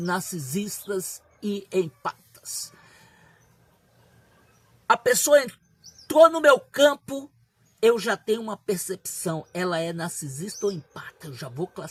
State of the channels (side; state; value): both; identical; correlation 1.00